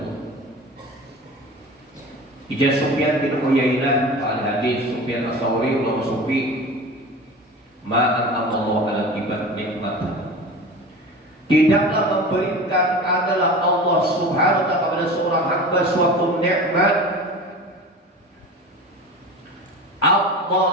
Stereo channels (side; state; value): both; normal; correlation 0.34